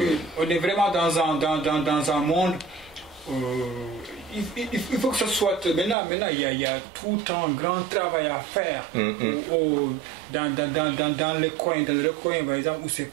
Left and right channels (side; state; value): left; drops out; at 6.0 s